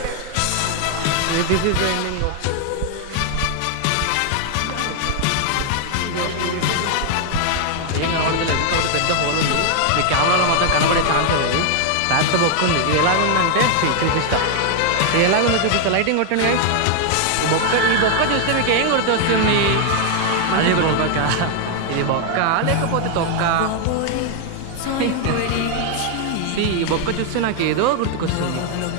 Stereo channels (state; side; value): different; both; correlation 0.00